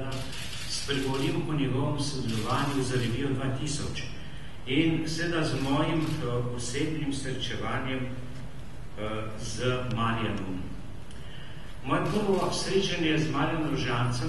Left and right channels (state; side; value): identical; both; correlation 1.00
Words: spregovorim o njegovem sodelovanju za revijo 2000 in seveda z mojim osebnim srečevanjem z Marjanom. Moje prvo srečanje z Marjanom